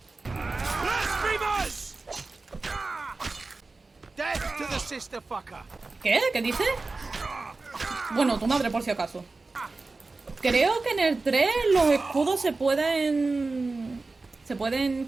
¿Qué? ¿Qué dice? Bueno, tu madre por si acaso. Creo que en el 3 los escudos se pueden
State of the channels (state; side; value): quieter; left; 3.6 dB